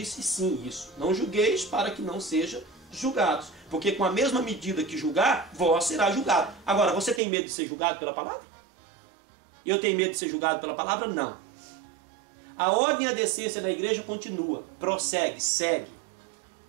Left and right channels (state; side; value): drops out; left; at 7.2 s